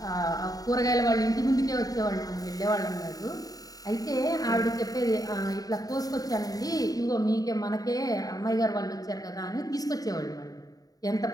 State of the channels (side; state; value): right; late; 0.18 ms